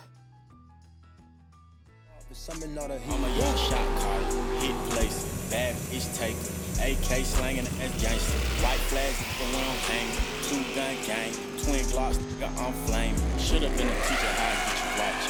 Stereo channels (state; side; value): identical; both; correlation 1.00